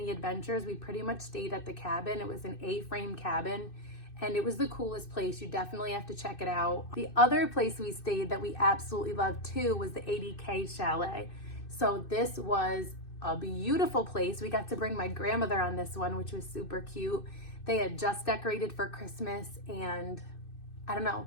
adventures. We pretty much stayed at the cabin. It was an A-frame cabin and it was the coolest place. You definitely have to check it out. The other place we stayed that we absolutely loved too was the 80K Chalet. So this was a beautiful place. We got to bring my grandmother on this one, which was super cute. They had just decorated for Christmas and I don't know,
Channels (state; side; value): late; right; 2.6 ms